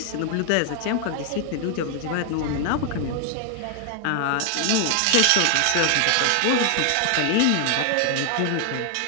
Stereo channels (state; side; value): different; both; correlation 0.00